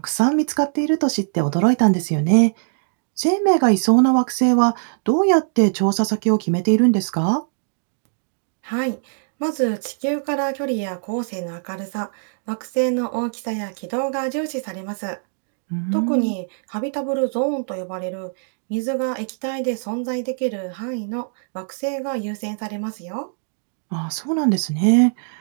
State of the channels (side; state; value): left; silent; digital silence